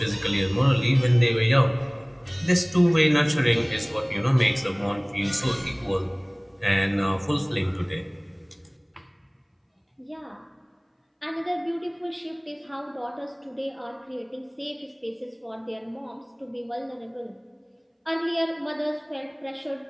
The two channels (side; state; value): both; identical; correlation 1.00